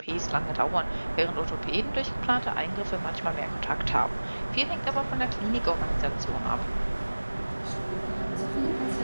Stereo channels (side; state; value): both; inverted; correlation -1.00